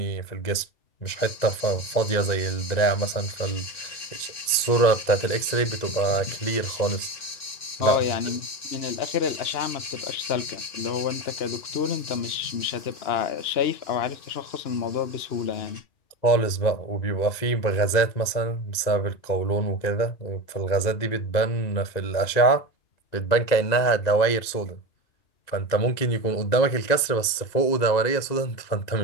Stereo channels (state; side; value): late; right; 2.0 ms